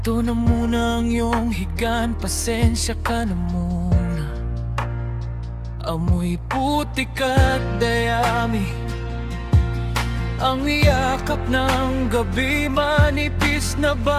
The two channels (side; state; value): both; identical; correlation 1.00